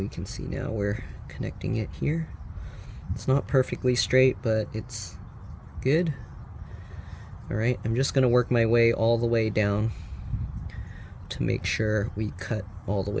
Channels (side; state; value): both; identical; correlation 1.00